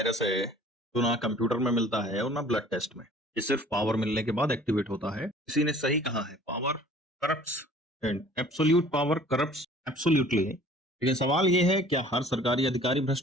है जो ना कंप्यूटर में मिलता है और ना ब्लड टेस्ट में। ये सिर्फ पावर मिलने के बाद एक्टिवेट होता है। किसी ने सही कहा है, power corrupts and absolute power corrupts absolutely. लेकिन सवाल ये है, क्या हर सरकारी अधिकारी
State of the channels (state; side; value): normal; both; correlation 0.50